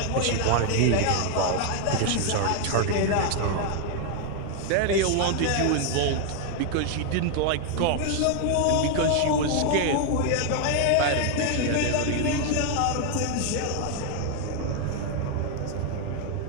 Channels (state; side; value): different; both; correlation 0.00